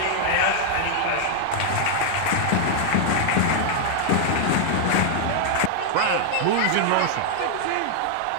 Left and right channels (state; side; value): different; both; correlation 0.00